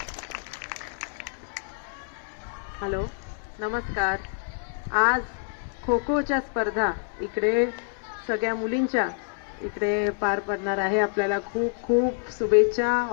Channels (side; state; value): right; silent; digital silence